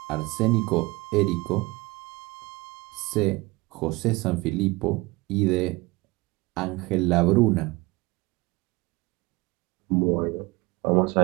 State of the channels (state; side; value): quieter; left; 22.5 dB